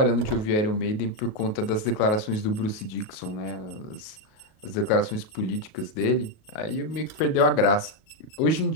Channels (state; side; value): late; right; 38 ms